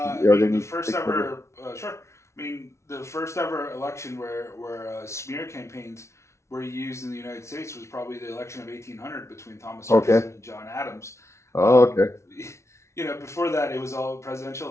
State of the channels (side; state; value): right; late; 0.13 ms